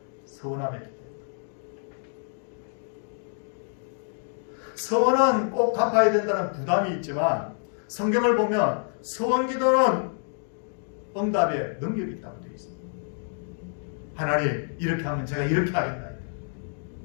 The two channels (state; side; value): silent; right; digital silence